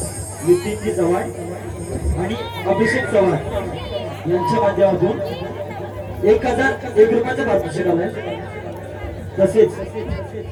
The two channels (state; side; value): identical; both; correlation 1.00